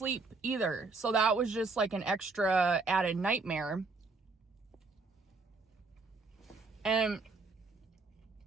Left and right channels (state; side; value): quieter; left; 4.0 dB